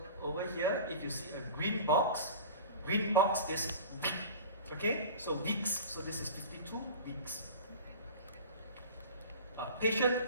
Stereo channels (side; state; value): both; inverted; correlation -0.36